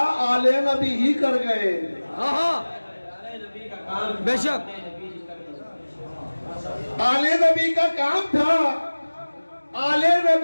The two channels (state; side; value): inverted; both; correlation -1.00